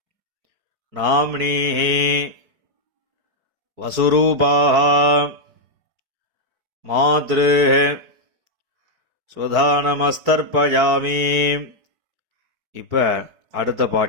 நாம்னீஹி வசுரூபாஹ மாத்ருஹ ஸ்வதானமஸ்தர்ப்பயாமி. இப்போ அடுத்த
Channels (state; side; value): late; left; 4.6 ms